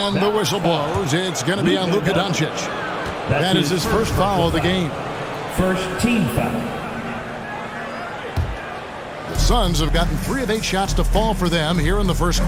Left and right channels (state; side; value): identical; both; correlation 1.00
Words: the whistle blows. It's going to be on Luka Doncic. That is his first foul of the game. First team foul. The Suns have gotten 3 of 8 shots to fall for them here in the first